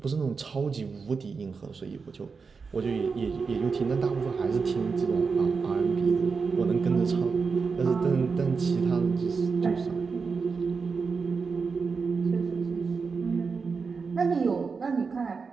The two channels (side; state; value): left; quieter; 5.0 dB